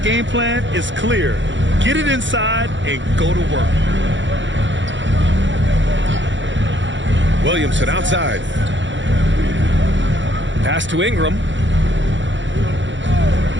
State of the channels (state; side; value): late; left; 0.54 ms